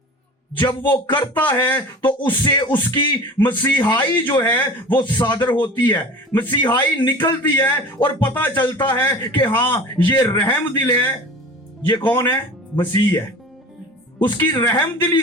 जब वो करता है तो उससे उसकी मसीहाई जो है वो सादर होती है, मसीहाई निकलती है और पता चलता है कि हाँ ये रहम दिल है। ये कौन है? मसीह है। उसकी रहम दिली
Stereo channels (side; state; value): both; normal; correlation 0.38